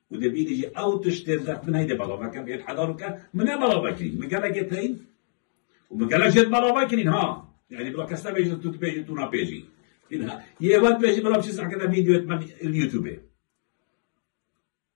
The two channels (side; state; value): right; silent; digital silence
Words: او تشترك من هيدا بلا كان بيت حضارك من بلا باكرين من قالك يتين ومن قالك يت بلا باكرين ها يعني بلا كستا بيجي تو بيجي تو نا بيجي انها يوات بيجي بلا بشي ساعه كذا فيديو من اليوتيوب